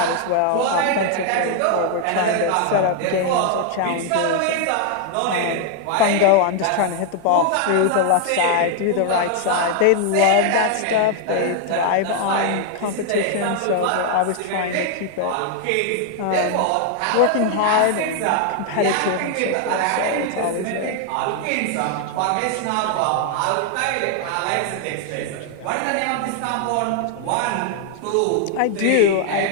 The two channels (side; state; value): both; different; correlation 0.00